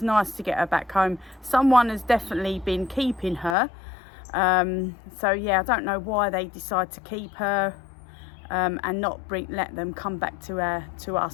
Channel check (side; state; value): right; drops out; at 3.6 s